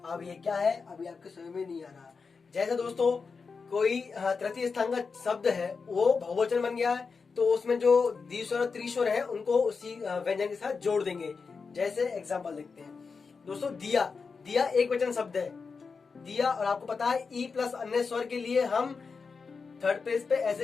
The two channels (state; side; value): quieter; right; 5.0 dB